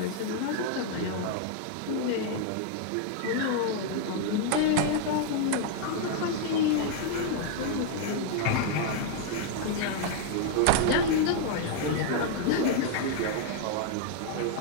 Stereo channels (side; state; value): both; different; correlation 0.00